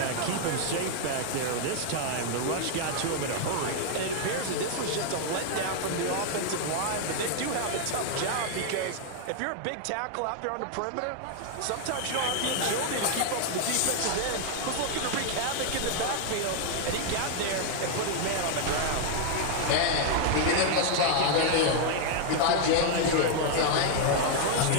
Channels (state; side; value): different; both; correlation 0.00